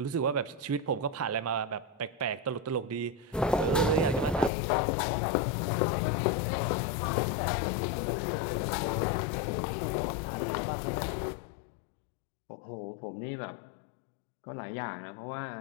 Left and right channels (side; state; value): right; drops out; at 4.5 s